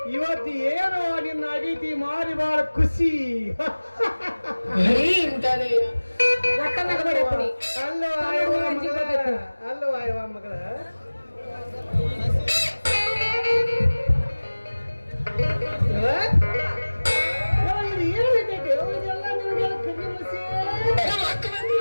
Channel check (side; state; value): both; inverted; correlation -1.00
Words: ಇವತ್ತು ಏನು ನಿನ್ನ ಅಡಿತಿ ಮಾರಿ ಬಾಳ ಖುಷಿ ಅಲ್ಲೋ ಆಯವ ಮಗಳ